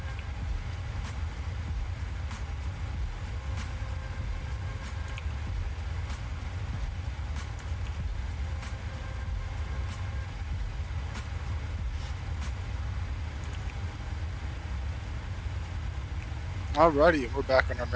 Alrighty, we're back on our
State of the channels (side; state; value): both; identical; correlation 1.00